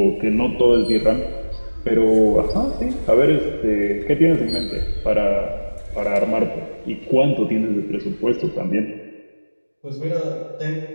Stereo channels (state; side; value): inverted; both; correlation -1.00